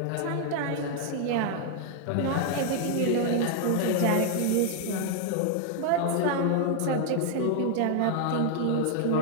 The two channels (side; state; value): both; different; correlation 0.00